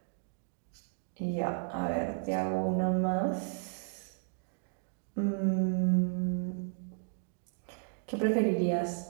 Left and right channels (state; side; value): silent; left; digital silence